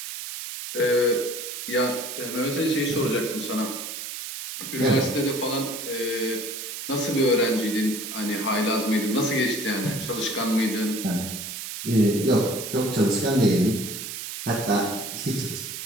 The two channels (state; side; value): noise; right; hiss, 7 dB below the sound